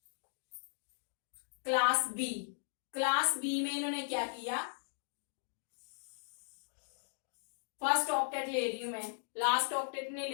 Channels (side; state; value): right; silent; digital silence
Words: क्लास बी में इन्होंने क्या किया, फर्स्ट ऑक्टेट ले रही हूं मैं, लास्ट ऑक्टेट नहीं